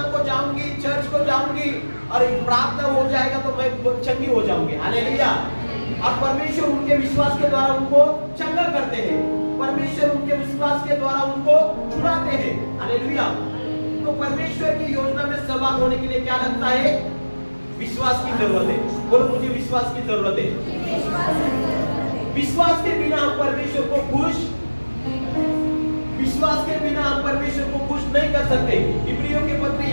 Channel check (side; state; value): both; inverted; correlation -1.00